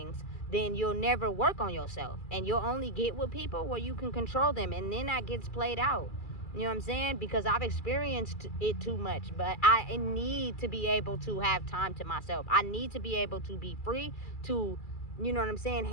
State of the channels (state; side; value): late; right; 2.4 ms